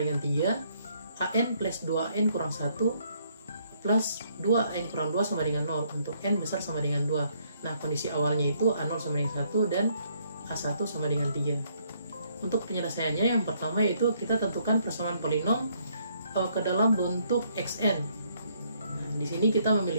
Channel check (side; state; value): both; inverted; correlation -0.69